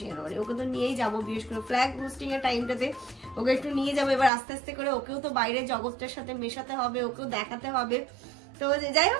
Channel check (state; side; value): drops out; left; at 4.3 s